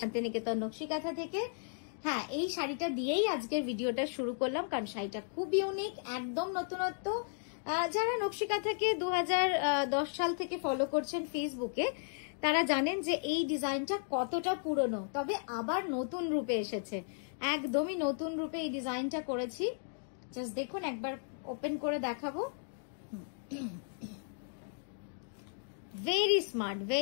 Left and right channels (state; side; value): silent; right; digital silence